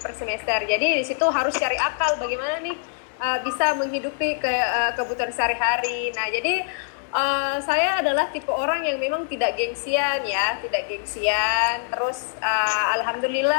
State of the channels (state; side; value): silent; right; 63 dB below the other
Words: semester. Jadi di situ harus cari akal bagaimana nih bisa menghidupi kebutuhan sehari-hari. Nah, jadi saya adalah tipe orang yang memang tidak gengsian ya, tidak gengsian. Terus